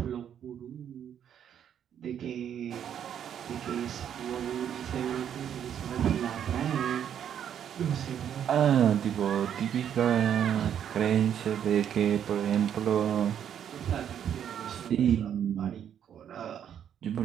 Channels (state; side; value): quieter; left; 9.2 dB